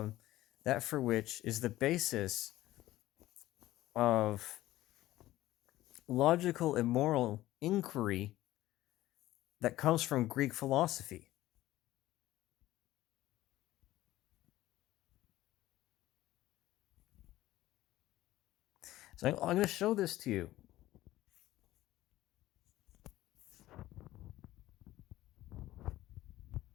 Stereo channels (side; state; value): right; quieter; 15.7 dB